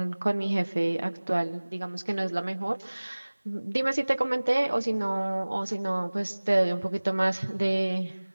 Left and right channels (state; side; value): inverted; both; correlation -1.00